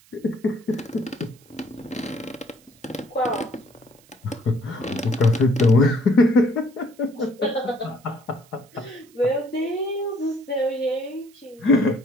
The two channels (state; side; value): noise; right; hiss, 28 dB below the sound